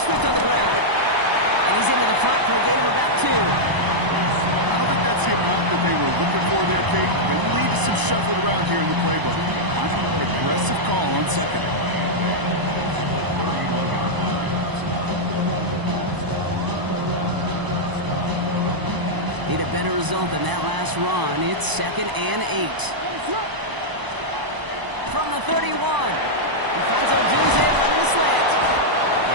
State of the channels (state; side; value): late; left; 1.0 ms